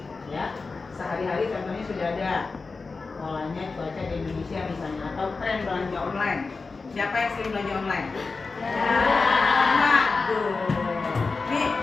Ya, sehari-hari contohnya sudah ada polanya cuaca di Indonesia misalnya, atau tren belanja online. Siapa yang sering belanja online? Waduh, nih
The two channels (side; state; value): right; quieter; 4.1 dB